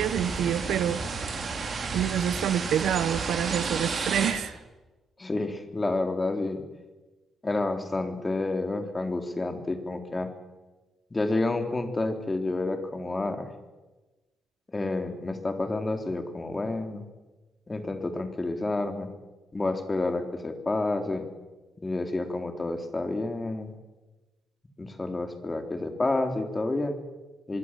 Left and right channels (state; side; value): normal; both; correlation 0.82